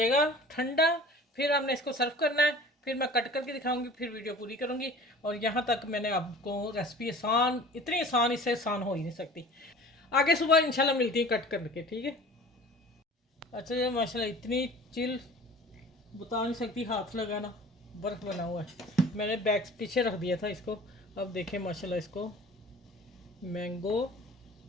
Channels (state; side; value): normal; both; correlation 0.44